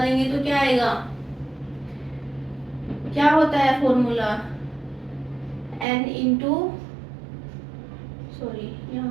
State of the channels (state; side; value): drops out; left; at 5.9 s